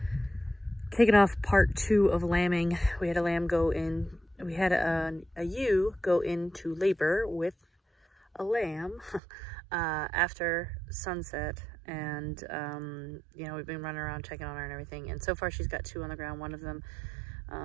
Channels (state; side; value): drops out; left; at 9.2 s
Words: Kicking off part 2 of lambing. We had a lamb go in, we had a ewe go into labor with a lamb after sunset. And, you know, we've been running around checking on her and everything. And so far she's got 2 on the ground. One of them